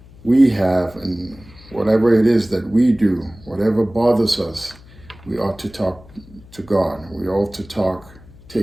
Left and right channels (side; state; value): left; noise; hum, 22 dB below the sound